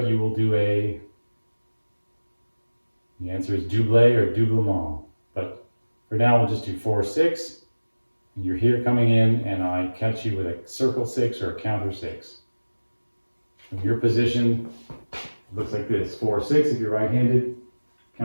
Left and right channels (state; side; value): inverted; both; correlation -1.00